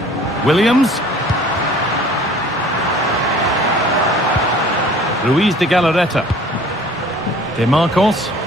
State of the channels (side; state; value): both; normal; correlation 0.50